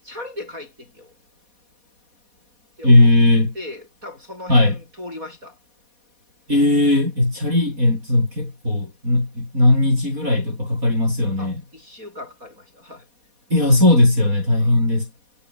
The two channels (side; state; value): left; late; 4.1 ms